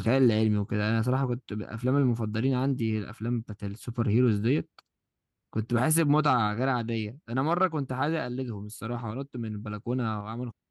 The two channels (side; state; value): both; identical; correlation 1.00